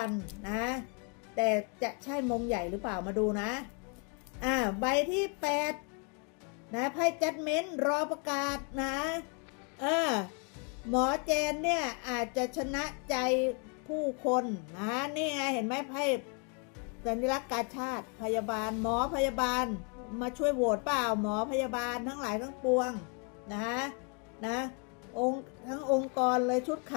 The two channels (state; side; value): quieter; right; 37.3 dB